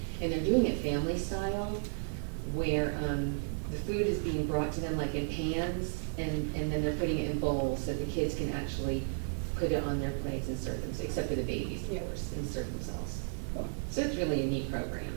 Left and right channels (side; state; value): left; silent; digital silence